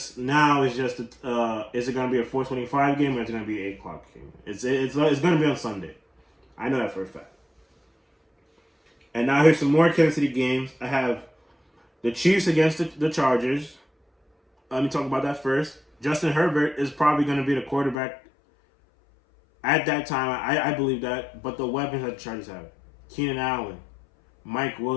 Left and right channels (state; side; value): drops out; right; at 17.9 s